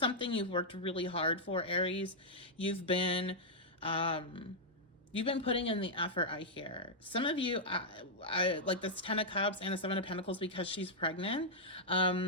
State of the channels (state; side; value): normal; both; correlation -0.07